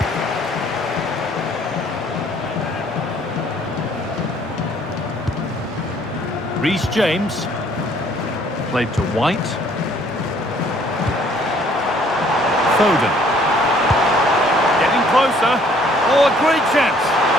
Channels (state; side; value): normal; both; correlation 0.60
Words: Reece James. Played to White. Foden. Getting closer. Oh, a great chance.